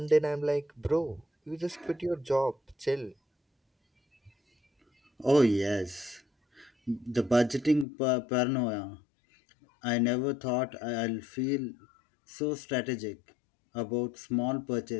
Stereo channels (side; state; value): right; drops out; at 7.9 s